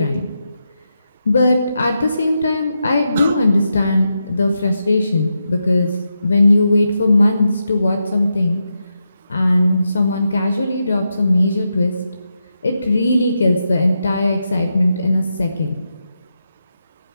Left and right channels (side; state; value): both; inverted; correlation -0.86